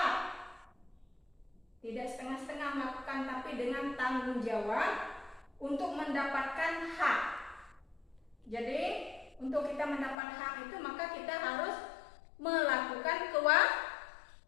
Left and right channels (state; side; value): drops out; right; at 10.2 s